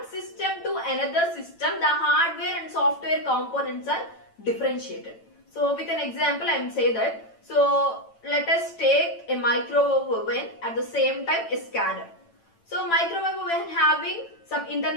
system to another system, the hardware and software components are differentiated. So with an example I am say that, so let us take a microwave oven, at the same time a scanner. So microwave oven having some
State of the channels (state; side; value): late; right; 8.9 ms